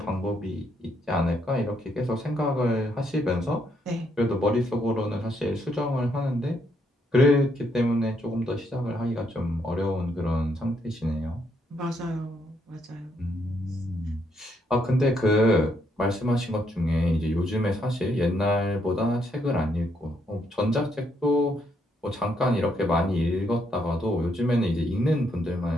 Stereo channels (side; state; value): both; normal; correlation 0.74